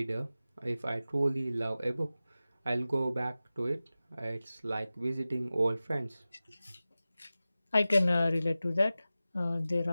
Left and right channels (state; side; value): inverted; both; correlation -0.96